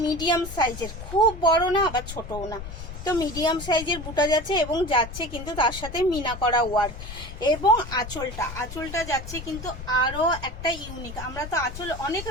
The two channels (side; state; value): left; noise; rumble, 11 dB below the sound